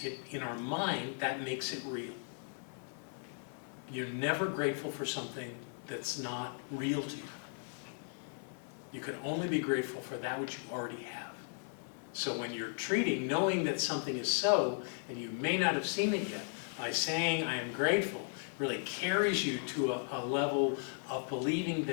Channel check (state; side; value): silent; right; 53 dB below the other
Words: in our mind, that makes it real. You're never grateful for something that's not real to you. You can only be grateful for that which you already have. So when you're treating, knowing that something is so, and you may not have seen it yet, by saying I am grateful, really carries you to a level of believing